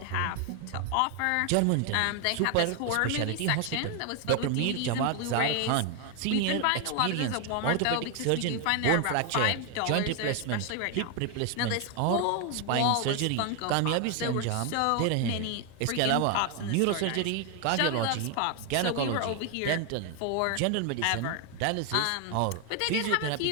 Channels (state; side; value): different; both; correlation 0.01